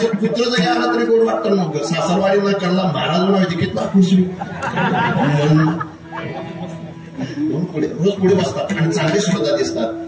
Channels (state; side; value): identical; both; correlation 1.00